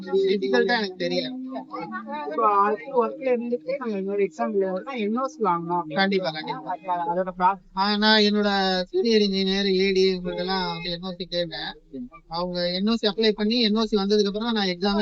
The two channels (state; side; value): identical; both; correlation 1.00